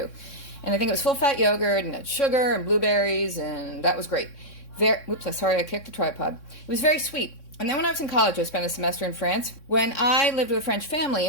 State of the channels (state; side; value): late; right; 3.6 ms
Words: And I think it was full-fat yogurt, and it had sugar and blueberries, and that was great. Sorry, I kicked the tripod. It was very sweet. And then when I was in college, I spent a semester in France. When I lived with a French family